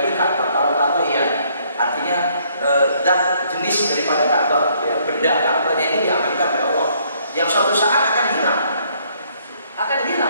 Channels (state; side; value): inverted; both; correlation -0.66